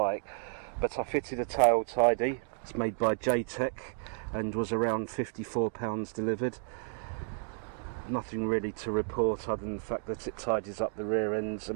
But I fitted a tail tidy. It's made by J-Tech and was around £54 delivered. Nothing really to report other than the fact that it tidies up the rear ends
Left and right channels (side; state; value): left; silent; 56 dB below the other